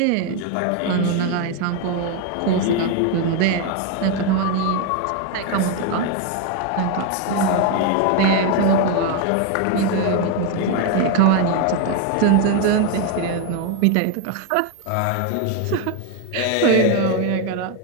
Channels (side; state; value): both; different; correlation 0.01